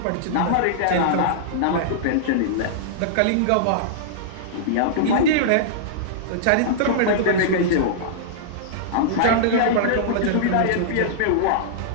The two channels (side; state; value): both; different; correlation -0.02